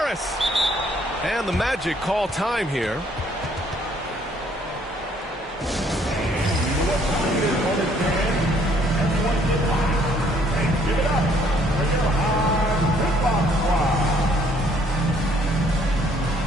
And the Magic call time here.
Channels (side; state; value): both; normal; correlation 0.64